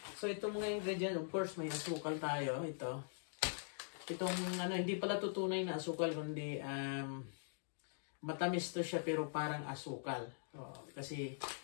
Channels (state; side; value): silent; right; digital silence